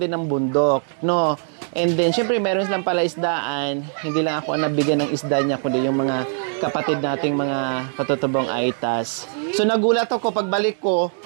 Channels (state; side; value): silent; left; 58 dB below the other